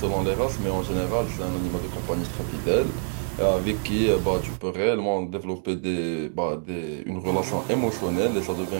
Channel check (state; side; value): silent; left; digital silence